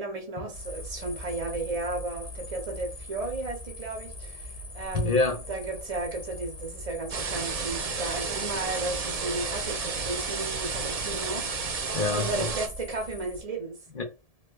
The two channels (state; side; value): late; left; 1.7 ms